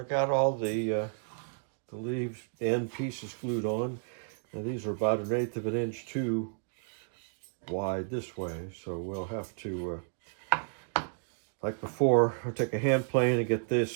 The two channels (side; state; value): left; silent; digital silence